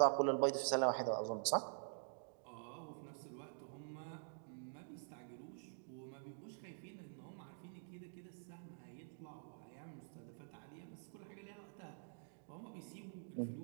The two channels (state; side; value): silent; left; digital silence